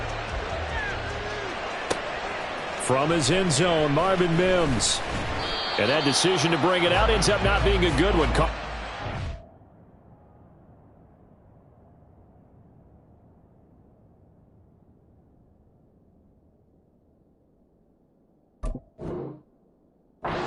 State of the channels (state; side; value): identical; both; correlation 1.00